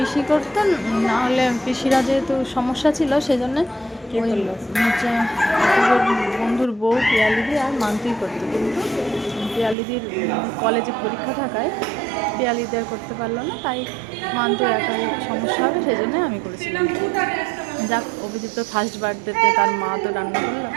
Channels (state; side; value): drops out; left; at 9.8 s